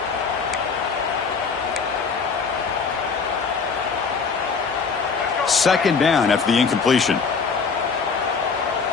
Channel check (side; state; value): right; quieter; 5.3 dB